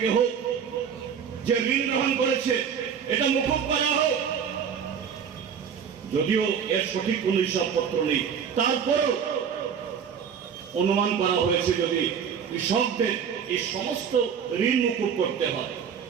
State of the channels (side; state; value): left; quieter; 7.3 dB